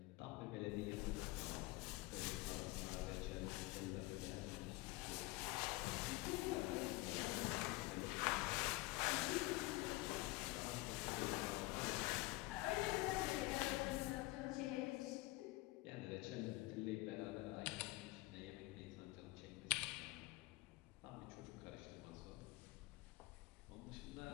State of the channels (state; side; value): quieter; right; 21.1 dB